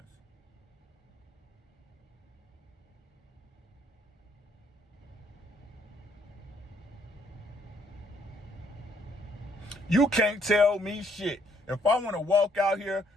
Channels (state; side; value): normal; both; correlation 0.67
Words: You can't tell me shit. If I want to walk out here